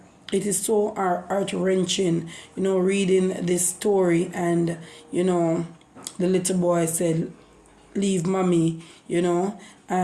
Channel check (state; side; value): identical; both; correlation 1.00